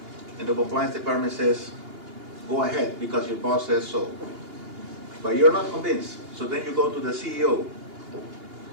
and the compliance department says, go ahead because your boss says so. But you're not convinced, so then you go to the CEO,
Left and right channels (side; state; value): left; late; 2.8 ms